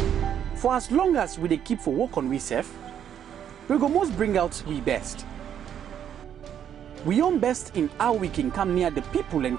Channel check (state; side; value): quieter; left; 9.4 dB